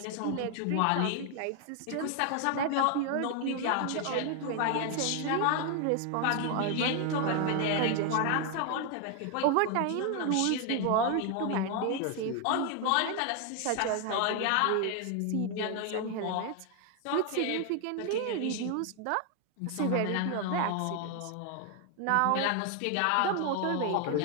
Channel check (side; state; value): both; different; correlation 0.01